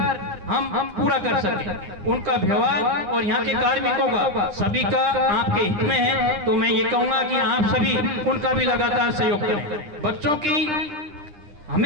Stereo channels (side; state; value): left; late; 9.9 ms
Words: हम पूरा कर सकें। उनका व्यवहार और यहाँ के कार्मिकों का सभी का आपके हित में है। तो मैं ये कहूँगा कि आप सभी उनका भी लगातार सहयोग करें। बच्चों की